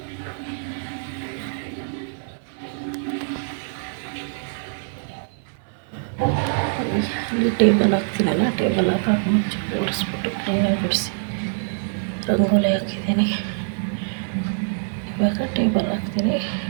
ಇಲ್ಲಿ ಟೇಬಲ್ ಹಾಕ್ತೀನಲ್ಲ, ಟೇಬಲ್ ಹಾಕಿ ಮುಂಚೆ ಒರೆಸ್ಬಿಟ್ಟು ಕ್ಲೀನಾಗಿ ಬಿಡಿಸಿ ರಂಗೋಲಿ ಹಾಕಿದ್ದೀನಿ. ಇವಾಗ ಟೇಬಲ್ ಹಾಕ್ತೀನಿ.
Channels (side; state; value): left; silent; 63 dB below the other